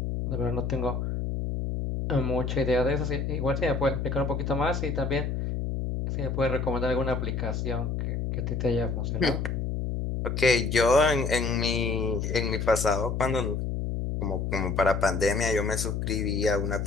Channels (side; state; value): left; noise; hum, 2 dB below the sound